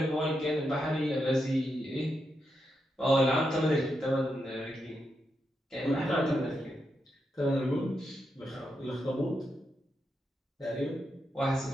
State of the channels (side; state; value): both; normal; correlation 0.84